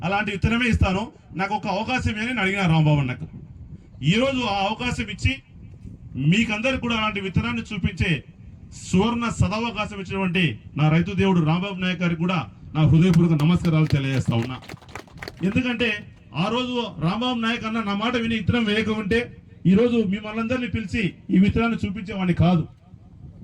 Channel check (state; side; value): identical; both; correlation 1.00